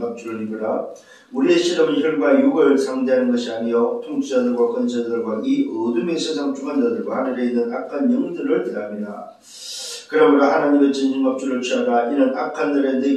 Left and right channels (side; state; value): both; identical; correlation 1.00